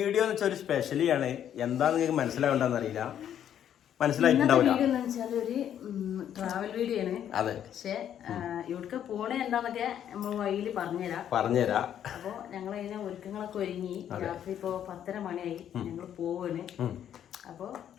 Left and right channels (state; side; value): quieter; right; 9.9 dB